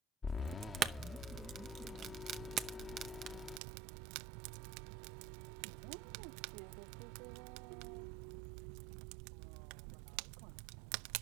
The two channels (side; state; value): left; drops out; at 3.6 s